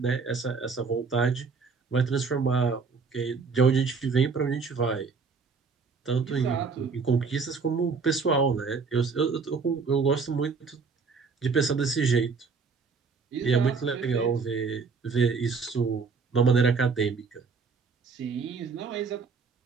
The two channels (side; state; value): left; quieter; 4.9 dB